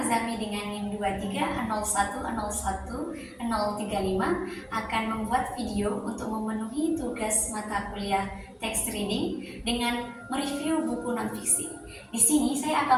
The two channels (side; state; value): both; identical; correlation 1.00